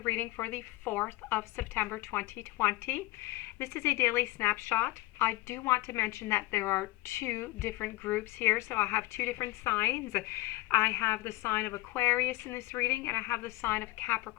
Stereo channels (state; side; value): quieter; right; 19.2 dB